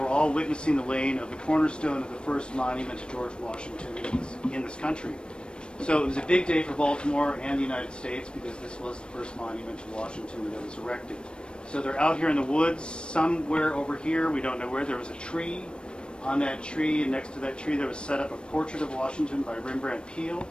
all witnessing the laying of the cornerstone of the first monument to George Washington in this country. So it was a big day for Baltimore and the United States because this was the first monument to Washington that was erected. So they're out here in the woods, somewhere over here, we don't know where. There was a tree. On that tree, and next to that tree, there was set up a portrait of Washington by Rembrandt Peale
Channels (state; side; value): late; right; 0.055 ms